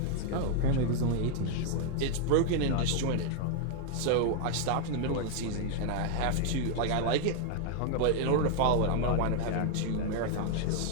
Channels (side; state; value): both; different; correlation 0.00